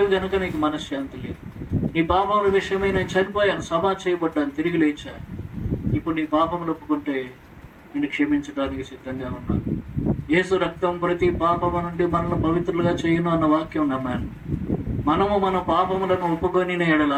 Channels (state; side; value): identical; both; correlation 1.00